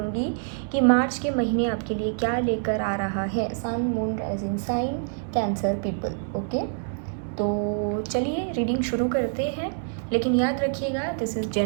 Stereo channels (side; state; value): left; silent; digital silence